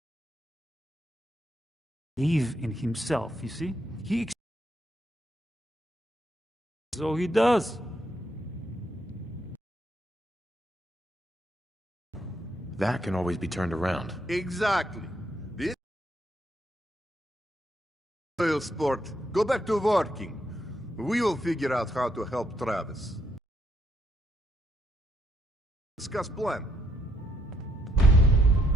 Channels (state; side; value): normal; both; correlation 0.75